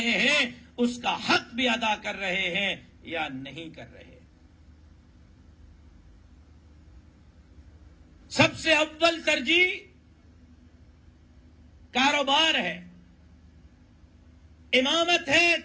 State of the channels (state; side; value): identical; both; correlation 1.00